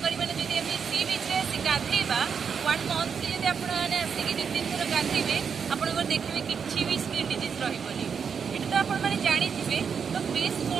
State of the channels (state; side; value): quieter; left; 6.5 dB